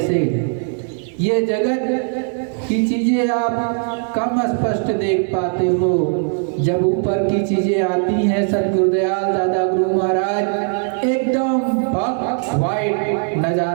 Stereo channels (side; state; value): left; silent; 57 dB below the other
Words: ये जगत की चीजें आप कम स्पष्ट देख पाते हो, जब ऊपर की चीजें आती हैं सतगुरुदयाल दादा गुरु महाराज एकदम वाइट